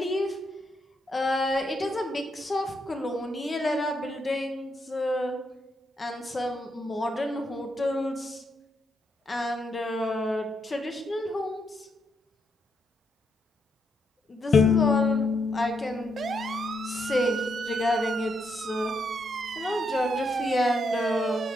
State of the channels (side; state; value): both; normal; correlation 0.79